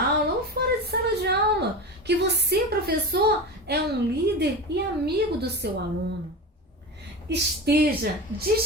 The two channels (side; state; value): both; normal; correlation 0.26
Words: ou fora de sala de aula, que você, professor, é um líder e amigo do seu aluno. Esteja